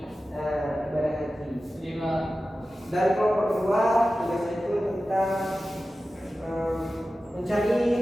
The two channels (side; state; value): both; normal; correlation 0.94